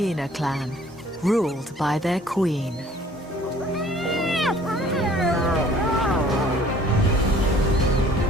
clan ruled by their queen.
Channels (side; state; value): both; normal; correlation 0.54